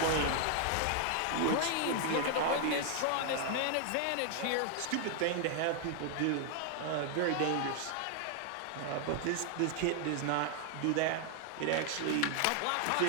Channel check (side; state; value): both; different; correlation 0.00